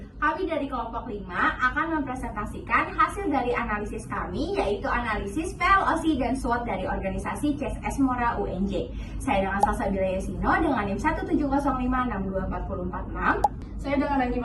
Kami dari kelompok 5 akan mempresentasikan hasil dari analisis kami, yaitu analisis PLOC dan SWOT dari organisasi CSS Mora UNJ. Saya dengan Salsabila Yasino dengan NIM 170562446. Saya dengan Najim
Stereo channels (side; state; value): both; identical; correlation 1.00